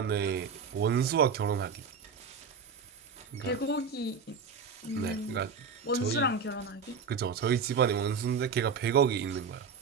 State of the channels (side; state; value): left; quieter; 5.6 dB